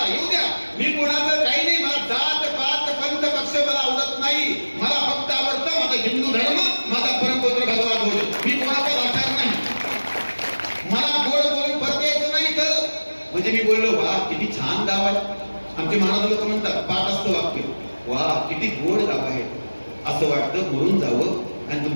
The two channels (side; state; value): both; inverted; correlation -1.00